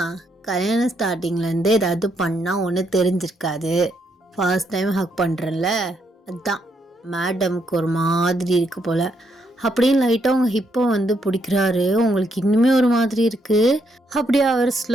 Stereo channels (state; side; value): normal; both; correlation 0.76